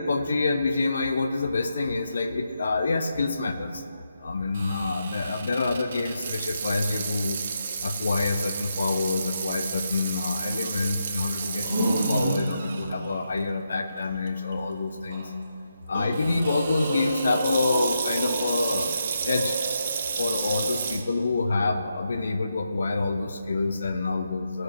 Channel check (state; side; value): inverted; both; correlation -0.83